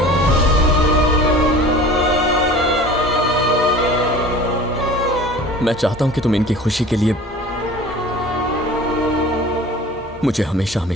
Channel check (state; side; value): normal; both; correlation 0.42